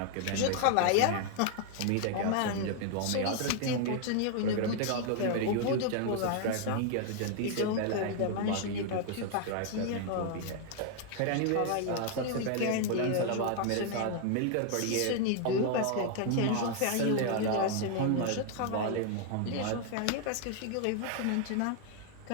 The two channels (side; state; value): both; different; correlation 0.00